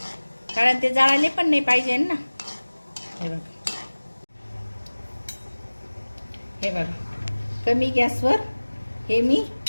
कारण ते जाळले पण नाही पाहिजे ना. हे बघा हे बघा कमी गॅसवर हे मी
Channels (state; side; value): inverted; both; correlation -1.00